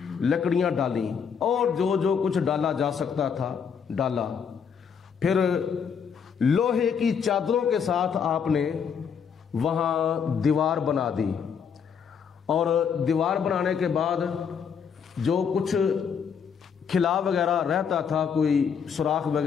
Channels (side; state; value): right; quieter; 6.9 dB